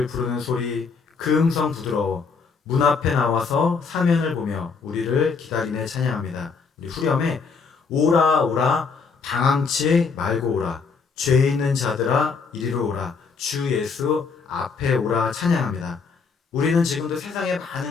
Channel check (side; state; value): right; quieter; 5.1 dB